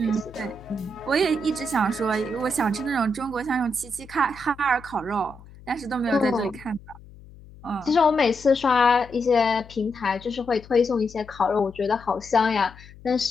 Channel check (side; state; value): left; noise; hum, 20 dB below the sound